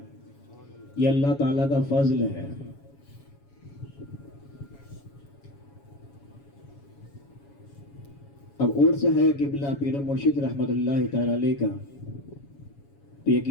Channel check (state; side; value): late; right; 7.2 ms